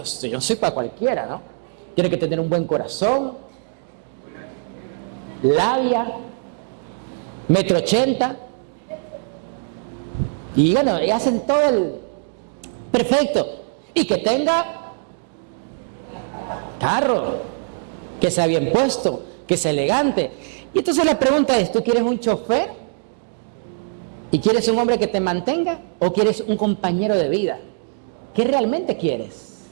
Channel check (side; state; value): left; silent; digital silence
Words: yo no soy para cualquiera, ¿no? Tiene que tener un buen corazón, labia, 1,80 m. Y bueno, y hacen todo el perfecto. Y que tenga carro, que sea bien puesto, que sea elegante. Y entonces la pregunta es, ¿tú quieres un chofer? ¿Y quieres un hombre que te mantenga? ¿O quieres un compañero de vida? ¿Qué realmente quieres?